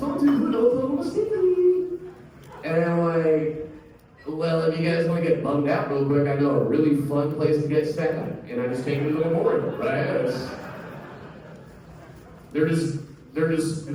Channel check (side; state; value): both; identical; correlation 1.00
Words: to do in Oklahoma City? And I'm like, well, if you guys want to get bummed out real quick, I know a really fun place to get sad. And I just take you to the memorial, right? We're